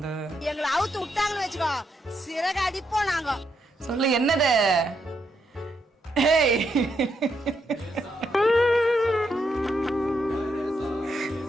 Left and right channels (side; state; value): both; normal; correlation 0.79